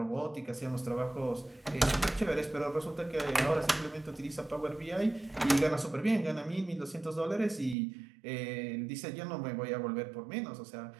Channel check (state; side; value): drops out; left; at 7.8 s